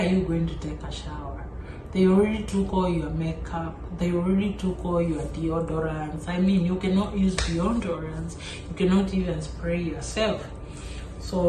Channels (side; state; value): both; identical; correlation 1.00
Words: you going to take a shower? They already took all your makeup. They already took all your deodorants. I mean, you cannot use deodorants. You cannot even spray yourself.